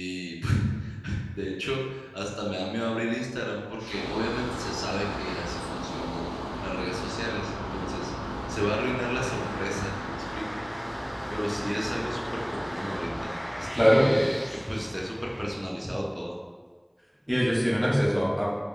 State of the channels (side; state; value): both; identical; correlation 1.00